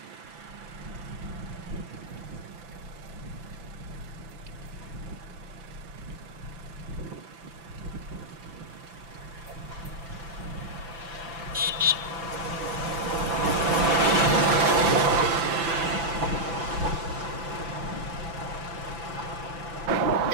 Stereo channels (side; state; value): left; late; 6.0 ms